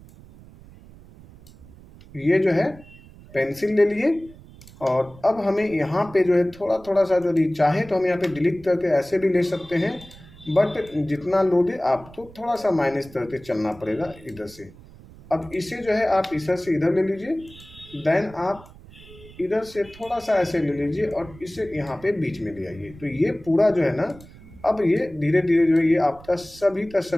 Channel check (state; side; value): noise; right; rumble, 21 dB below the sound